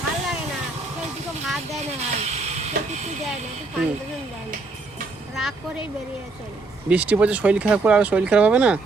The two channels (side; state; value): left; quieter; 3.5 dB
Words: ভালো লাগে না, কেউ দুটো ভাত দেয় না, ভাই কেউ কিছু দেয় না, একটু পানি দেয় না, রাগ করেই বেরিয়ে চলে। বৃষ্টি পড়ছে, শরীর খারাপ করে আর শরীর খারাপ হবে না?